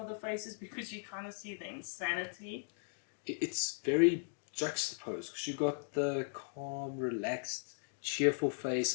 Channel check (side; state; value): right; silent; digital silence